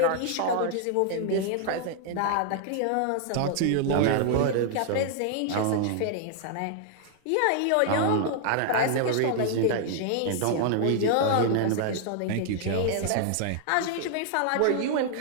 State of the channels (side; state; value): both; different; correlation 0.00